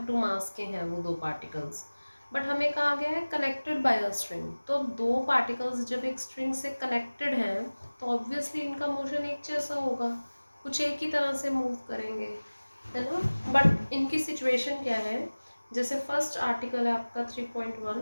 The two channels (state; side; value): inverted; both; correlation -1.00